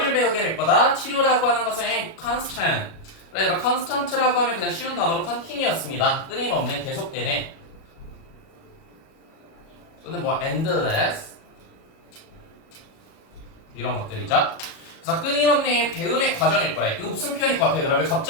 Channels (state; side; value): late; right; 37 ms